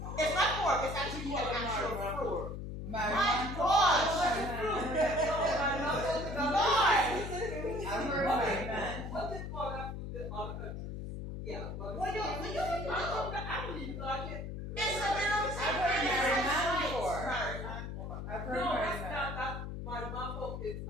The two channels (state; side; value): noise; left; hum, 6 dB below the sound